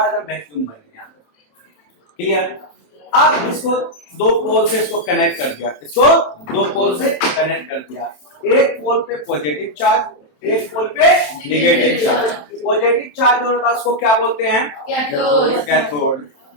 एकदम वैक्यूम बन गया। क्लियर? अब इसको दो पोल से इसको कनेक्ट कर दिया, इसको दो पोल से कनेक्ट कर दिया। एक पोल पे पॉजिटिव चार्ज, एक पोल पे नेगेटिव चार्ज। पॉजिटिव चार्ज जो होता है उसको क्या बोलते हैं? Cathode. कैथोड।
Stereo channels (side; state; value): right; late; 27 ms